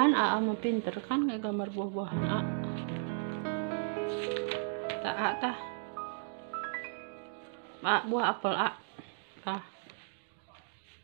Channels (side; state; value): left; silent; digital silence